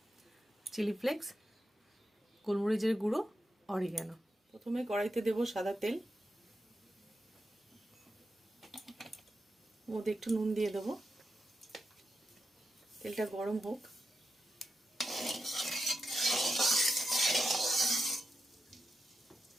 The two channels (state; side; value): normal; both; correlation 0.88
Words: চিলি ফ্লেক্স, গোলমরিচের গুঁড়ো, অরিগ্যানো। প্রথমে কড়াইতে দেব সাদা তেল, মধ্যে একটু নুন দিয়ে দেবো। তেলটা গরম হোক।